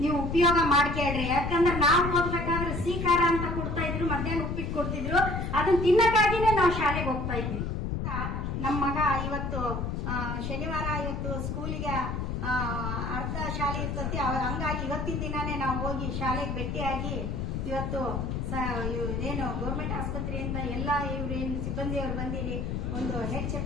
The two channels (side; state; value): left; noise; rumble, 2 dB below the sound